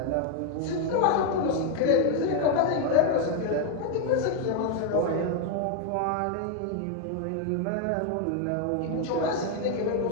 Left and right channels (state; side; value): different; both; correlation 0.01